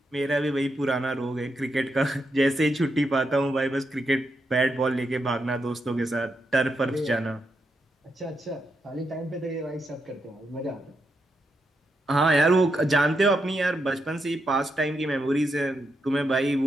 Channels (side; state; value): both; normal; correlation 0.83